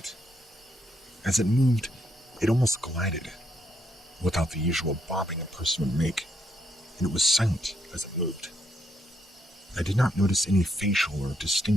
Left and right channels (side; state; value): both; normal; correlation 0.76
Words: As it moved, it almost glided, without the usual bobbing a person would make, and it was silent as it moved. I did not notice any facial or